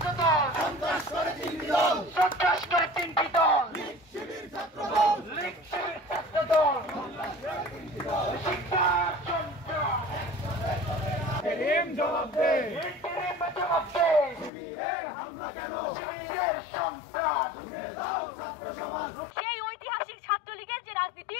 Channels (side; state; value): right; drops out; at 14.5 s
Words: দল সন্ত্রাস করে তিনটি দল লীগ শিবির ছাত্র দল শিক্ষার সন্ত্রাস জবাব দে শিবিরের হামলা কেন শিবিরের সন্ত্রাস সেই ঐতিহাসিক ছাত্রলীগের যে রাজনীতি